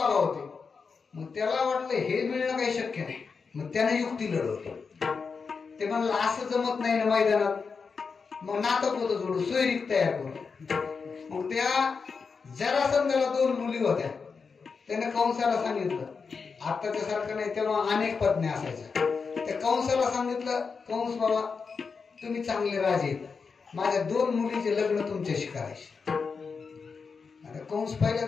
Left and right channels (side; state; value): right; quieter; 5.2 dB